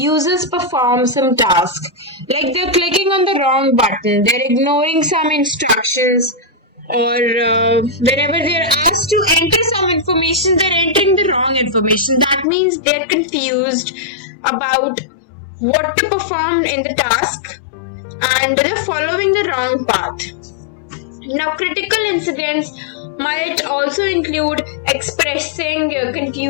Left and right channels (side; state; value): right; drops out; at 12.5 s